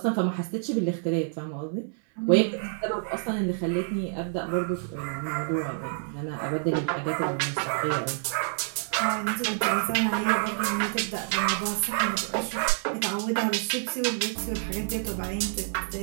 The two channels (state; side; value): silent; left; digital silence